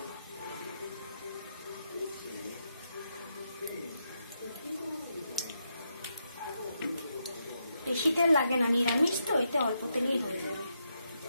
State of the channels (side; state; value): both; inverted; correlation -0.82